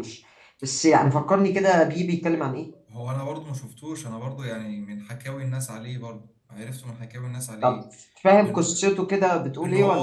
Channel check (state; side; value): identical; both; correlation 1.00